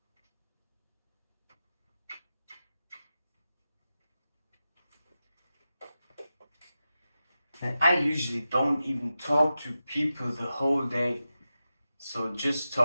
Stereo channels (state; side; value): inverted; both; correlation -0.92